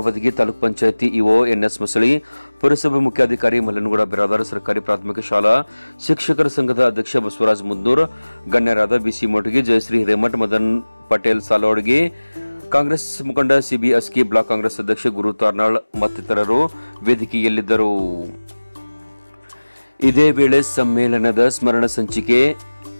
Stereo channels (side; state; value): both; inverted; correlation -1.00